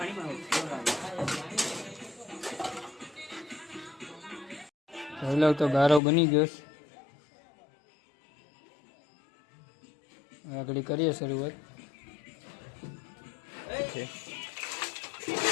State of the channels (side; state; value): right; drops out; at 6.0 s